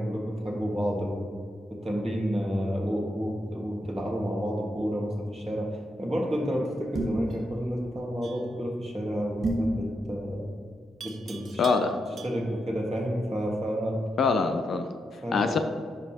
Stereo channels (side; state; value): both; normal; correlation 0.85